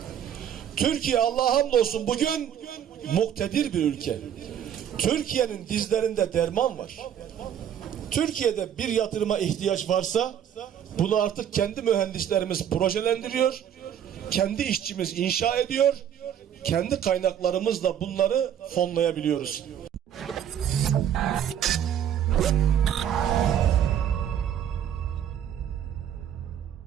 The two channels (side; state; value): left; quieter; 9.5 dB